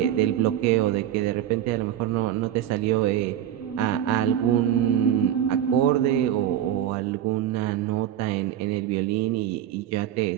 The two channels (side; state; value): left; quieter; 11.2 dB